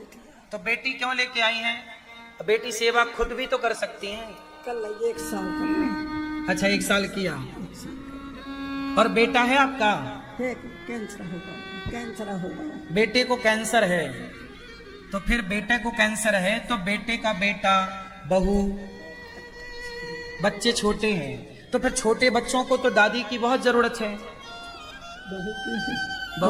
तो बेटी क्यों लेके आई है? बेटी सेवा खुद भी तो कर सकती हैं। कल 1 साल कर। अच्छा, 1 साल किया। और बेटा है आपका? कैंसर होगा, कैंसर होगा। बेटे को कैंसर है, तो फिर बेटे को कैंसर है तो बेटे का बेटा, बहू, बच्चे छोटे हैं, तो फिर छोटे बच्चों को तो दादी की बहुत जरूरत है।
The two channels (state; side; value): identical; both; correlation 1.00